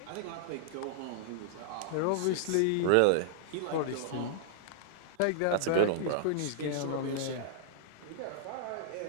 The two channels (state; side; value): different; both; correlation -0.01